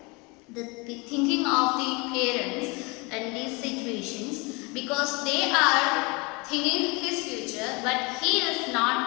the thinking of the parents in these situations, because they are thinking his future, but he is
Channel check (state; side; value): quieter; right; 28.0 dB